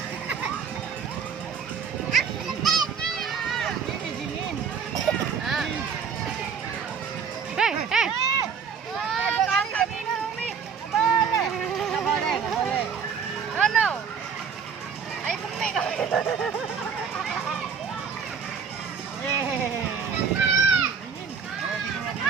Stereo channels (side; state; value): left; quieter; 6.4 dB